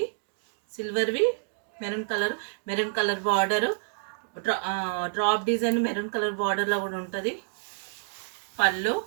సిల్వర్వి maroon colour border, drop design maroon colour బార్డర్లో కూడా ఉంటుంది. పళ్ళు,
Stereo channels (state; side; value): silent; left; digital silence